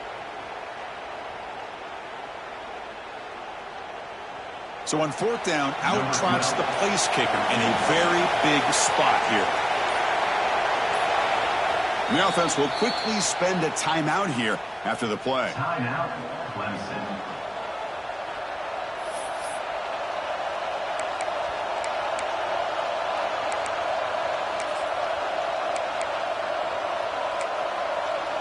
So on fourth down, out trots the place kicker in a very big spot here. And the offense will quickly spend a timeout here after the play. Timeout, Clemson.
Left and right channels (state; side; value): identical; both; correlation 1.00